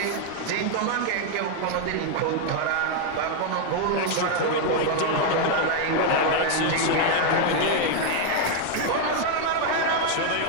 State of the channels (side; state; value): both; different; correlation 0.01